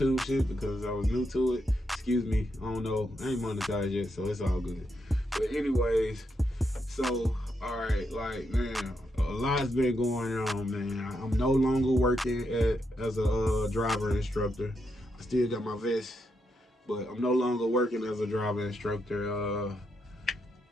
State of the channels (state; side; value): normal; both; correlation 0.82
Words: shit, because I was new to it. Excuse me, I don't know, I ain't monetized yet, so it's all good. But anyways, so alright, like, man, a lot's been going on, man. I'm no longer working as a driver instructor. I still got my vest, but I'm no longer working as a driver instructor